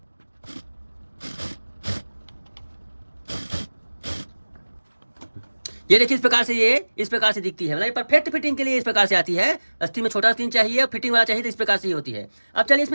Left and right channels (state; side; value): inverted; both; correlation -1.00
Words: ये देखिए इस प्रकार से दिखती है, मतलब परफेक्ट फिटिंग के लिए इस प्रकार से आती है। आस्तीन में छोटा आस्तीन चाहिए और फिटिंग वाला चाहिए तो इस प्रकार से ही होती है। अब चलिए